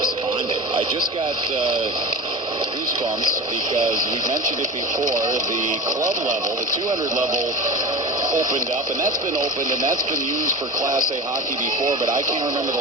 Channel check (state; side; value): normal; both; correlation 0.31